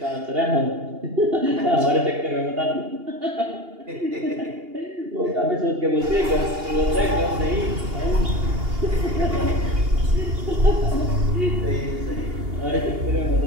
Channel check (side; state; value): left; late; 2.8 ms